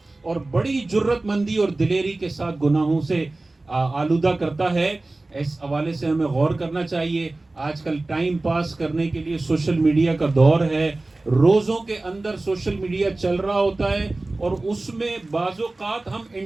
اور بڑی جرت مندی اور دلیری کے ساتھ گناہوں سے آلودہ کرتا ہے۔ اس حوالے سے ہمیں غور کرنا چاہیے۔ آج کل ٹائم پاس کرنے کے لیے سوشل میڈیا کا دور ہے، روزوں کے اندر سوشل میڈیا چل رہا ہوتا ہے، اور اس میں بعض اوقات ہم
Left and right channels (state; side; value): quieter; left; 3.0 dB